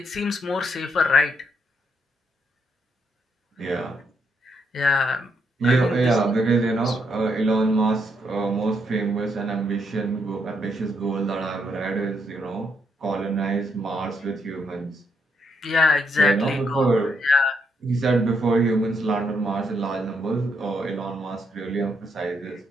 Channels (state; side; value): normal; both; correlation 0.77